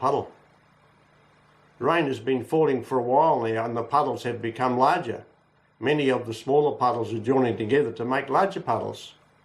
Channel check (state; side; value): identical; both; correlation 1.00